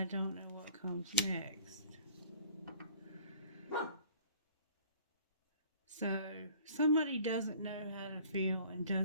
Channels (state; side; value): inverted; both; correlation -0.50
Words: don't know what comes next. So, somebody doesn't know how to feel and